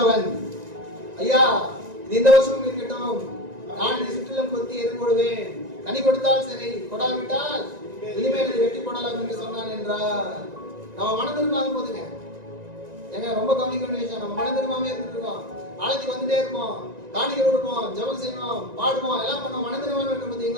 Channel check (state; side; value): late; left; 1.9 ms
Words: அவன், ஐயா இது இந்த வருஷமும் இருக்கட்டும், நான் இதை சுற்றிலும் கொத்தி எதிர்கொடுவேன், கனி கொடுத்தால் சரி, கொடாவிட்டால் இனிமேல் இதை வெட்டி போடலாம் என்று சொன்னான் என்றார். நம்ம மனம் திரும்பாத போதுங்க, எங்க ரொம்ப கவனிக்க வேண்டிய விஷயம், நம்ம மனம் திரும்பாமே இருந்துட்டு இருக்கோம், ஆலயத்துக்கு வந்துட்டே இருப்போம், காணிக்க கொடுப்போம், ஜெபம் செய்வோம், பாடுவோம், எல்லாம் பண்ணுவோம், மனம் திரும்பாம இருக்கும்